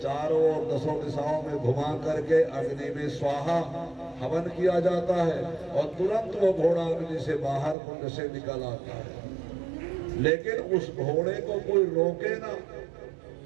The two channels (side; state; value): left; drops out; at 7.8 s